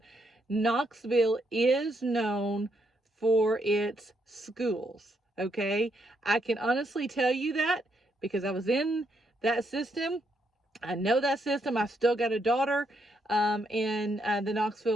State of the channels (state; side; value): normal; both; correlation 0.76